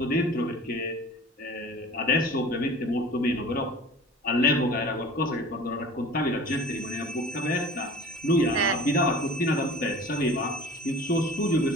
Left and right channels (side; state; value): both; normal; correlation 0.41